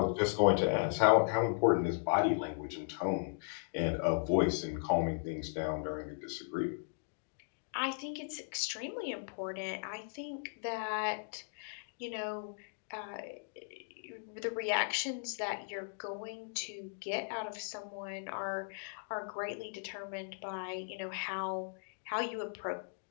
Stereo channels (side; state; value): right; silent; digital silence